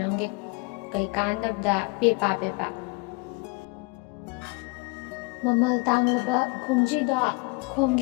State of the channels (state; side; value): quieter; right; 28.3 dB